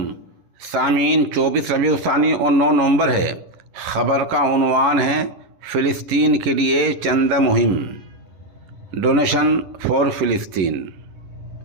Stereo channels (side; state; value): left; late; 11 ms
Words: سامعین، 24 ربیع الثانی اور 9 نومبر ہے۔ خبر کا عنوان ہے فلسطین کے لیے چندہ مہم، ڈونیشن فار فلسطین۔